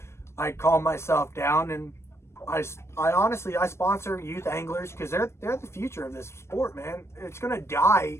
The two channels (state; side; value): late; right; 0.13 ms